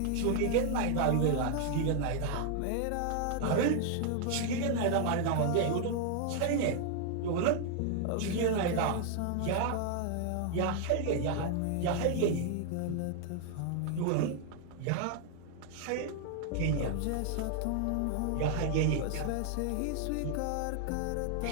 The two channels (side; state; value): both; different; correlation 0.00